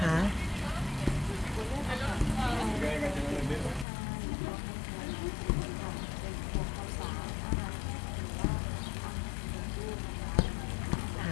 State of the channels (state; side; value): drops out; right; at 3.9 s